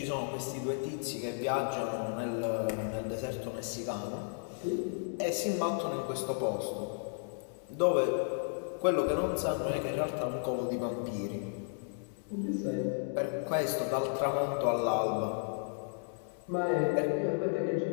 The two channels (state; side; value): silent; right; 55 dB below the other